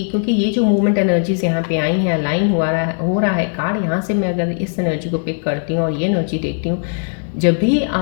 क्योंकि ये जो मूवमेंट एनर्जीज यहाँ पे आई हैं, अलाइन हो रहा है कार्ड यहाँ से। मैं अगर इस एनर्जी को पिक करती हूँ और ये एनर्जी देखती हूँ, जब भी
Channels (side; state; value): right; silent; 60 dB below the other